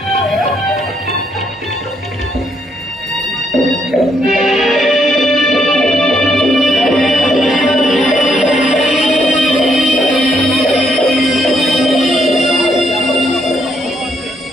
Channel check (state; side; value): normal; both; correlation 0.74